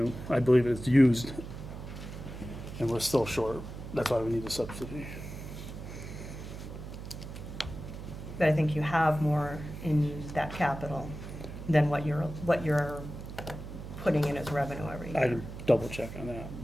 I believe it's used, and we're still short. That's why we need the subsidy. But I think you have more in that capital than what you're putting in as revenue every I year. can double check on that.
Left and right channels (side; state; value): right; noise; hum, 10 dB below the sound